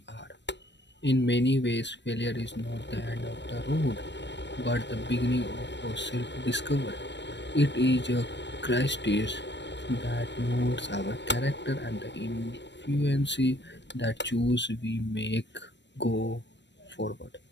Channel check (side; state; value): right; late; 0.52 ms